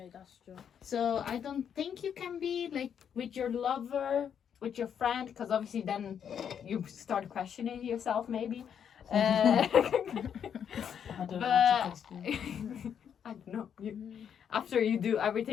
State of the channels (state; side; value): quieter; right; 8.2 dB